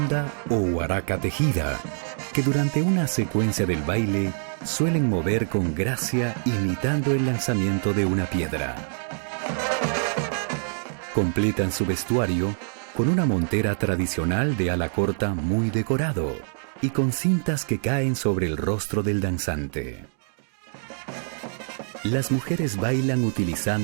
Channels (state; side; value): silent; left; 62 dB below the other